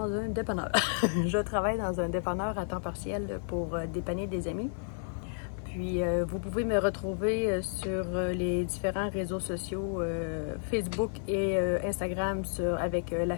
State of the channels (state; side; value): silent; right; 57 dB below the other